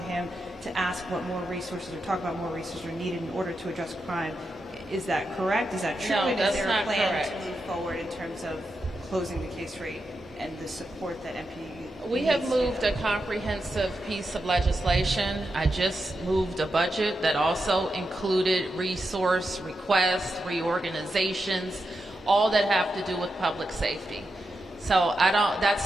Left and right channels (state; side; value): normal; both; correlation 0.87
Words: to ask what more resources or talk about more resources are needed in order to address crime, is that correct? Is that true? No, and that's is there not a plan correct. to move forward in terms of closing the case rate and the support that MP We have moved a comprehensive piece of legislation. I just moved a budget that also included resource requests, reorganizations, all that have to do with public safety. So